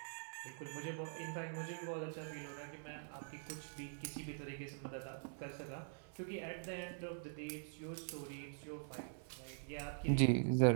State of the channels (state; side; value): silent; left; digital silence